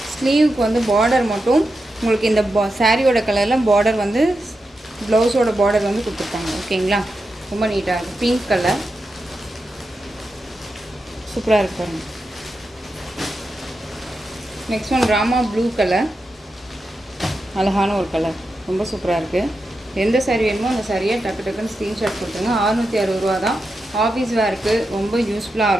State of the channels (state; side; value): normal; both; correlation 0.88